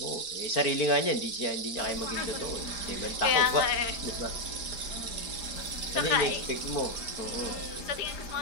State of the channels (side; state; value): right; late; 4.9 ms